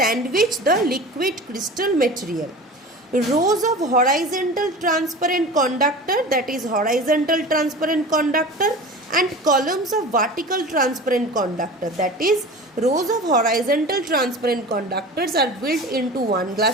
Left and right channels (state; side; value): normal; both; correlation 0.35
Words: the liquid crystal material. Rows of horizontal transparent conductor, that is horizontal transparent conductor, and columns of vertical transparent conductor, that is rows of horizontal transparent conductors are built into one